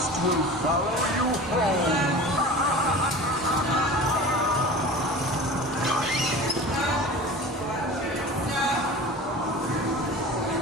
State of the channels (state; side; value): normal; both; correlation 0.36